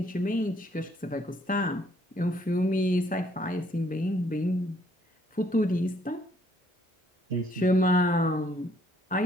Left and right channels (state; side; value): normal; both; correlation 0.66